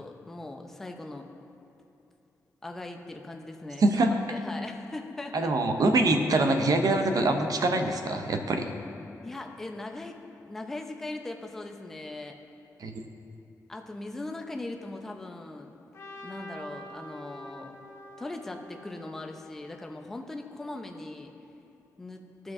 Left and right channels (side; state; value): both; normal; correlation 0.68